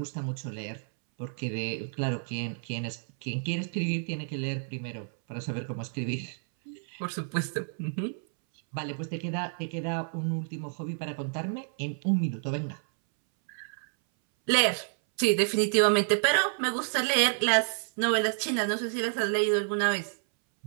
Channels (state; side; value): silent; left; 58 dB below the other